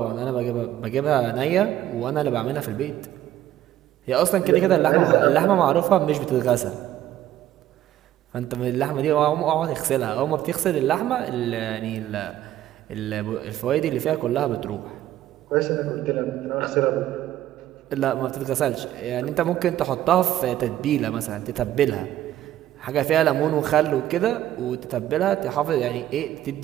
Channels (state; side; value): quieter; left; 12.8 dB